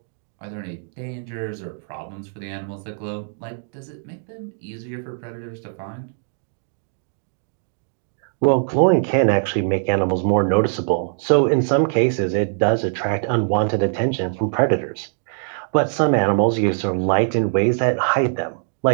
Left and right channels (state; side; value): silent; left; digital silence